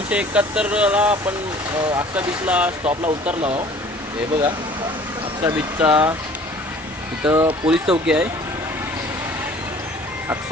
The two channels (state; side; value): normal; both; correlation 0.50